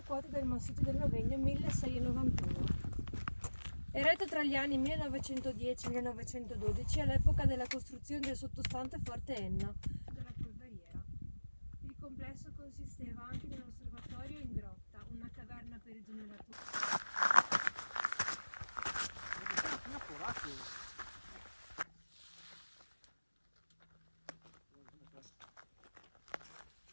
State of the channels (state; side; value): inverted; both; correlation -1.00